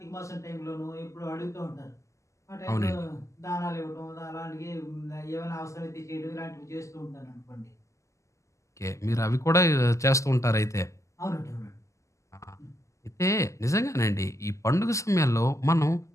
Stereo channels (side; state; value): right; late; 0.15 ms